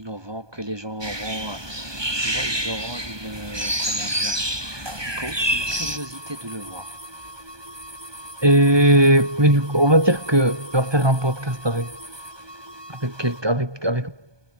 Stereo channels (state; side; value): late; left; 1.2 ms